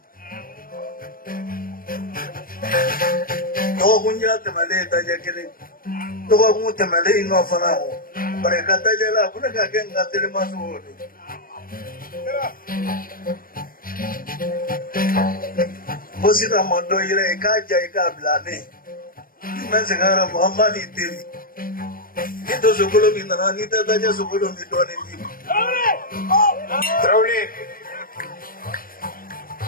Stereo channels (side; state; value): right; late; 0.41 ms